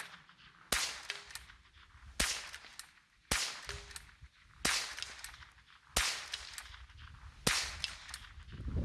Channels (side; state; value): both; identical; correlation 1.00